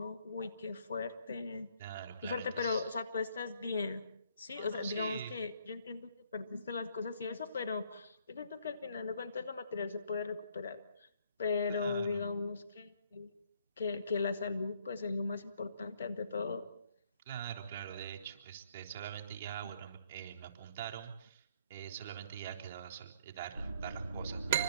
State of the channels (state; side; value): inverted; both; correlation -0.66